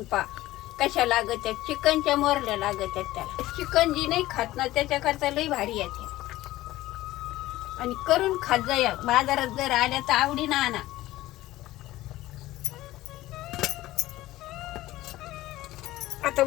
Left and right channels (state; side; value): quieter; right; 16.5 dB